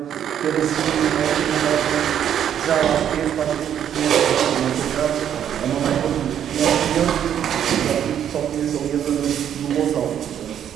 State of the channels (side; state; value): left; quieter; 9.6 dB